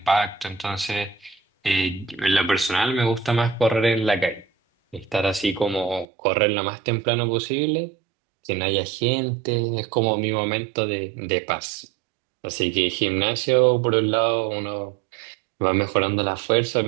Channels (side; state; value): left; drops out; at 6.1 s